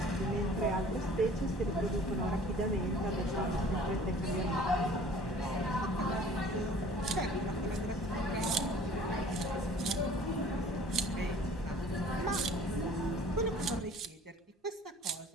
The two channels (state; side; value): normal; both; correlation 0.49